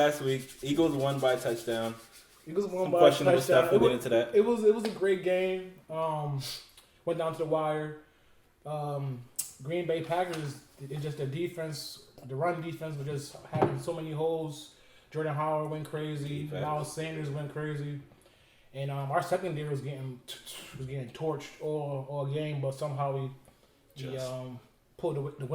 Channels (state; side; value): identical; both; correlation 1.00